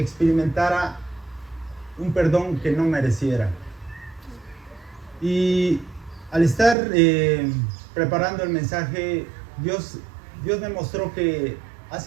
experimentara un perdón que no mereciera. Y al estar preparando el mensaje, Dios me mostró que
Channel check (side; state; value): left; drops out; at 6.8 s